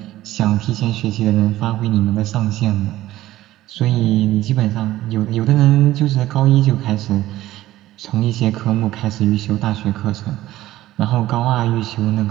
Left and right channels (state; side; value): quieter; left; 15.2 dB